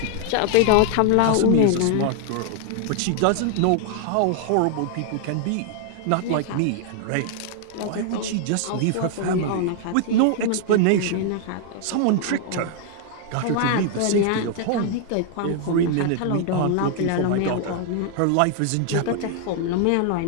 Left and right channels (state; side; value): different; both; correlation 0.00